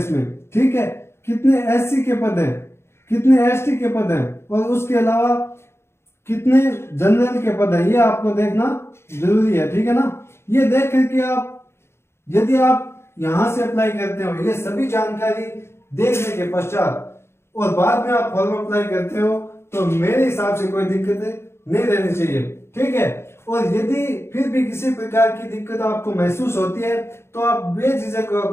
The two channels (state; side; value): late; right; 0.12 ms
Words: ठीक है। कितने एससी के पद है, कितने एसटी के पद है, और उसके अलावा कितने जनरल के पद है, ये आपको देखना जरूरी है। ठीक है ना। ये देख करके आप यदि आप यहां से अप्लाई करते हो, ये सभी जानकारी देखने के पश्चात और बाद में आप फॉर्म अप्लाई करते हो, तो मेरे हिसाब से कोई दिक्कत नहीं रहनी चाहिए। ठीक है। और यदि फिर भी किसी प्रकार की दिक्कत आपको महसूस होती है तो आप बेझिझक